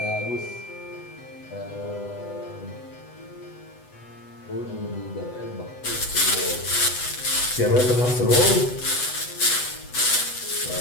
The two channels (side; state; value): right; late; 8.0 ms